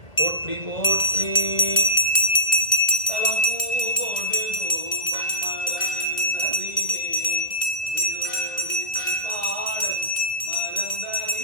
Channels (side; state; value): right; late; 2.2 ms